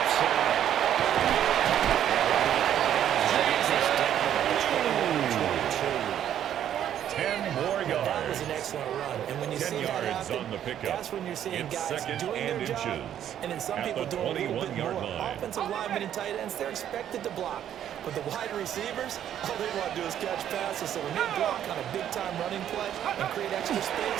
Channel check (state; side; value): quieter; left; 10.4 dB